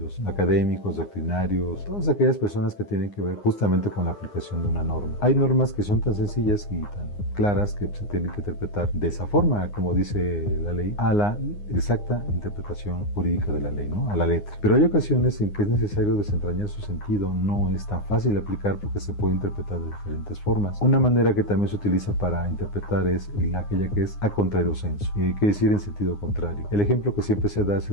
académicos, doctrinarios, todas aquellas personas que tienen que ver justamente con la aplicación de una norma. Hay normas que son tan sencillas y tan claras que se tienen que interpretar de esa forma, como dice la ley, a la exacta interpretación jurídica de la ley, ¿no? A la letra. Pero hay ocasiones en que es necesario desentrañar su sentido, no es tan fácil aplicar porque se puede interpretar de diferentes formas. Una manera que también se utiliza para interpretar es aquella que es a contrario sensu, quiere decir en sentido contrario. El ejemplo que siempre se da es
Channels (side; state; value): right; late; 9.7 ms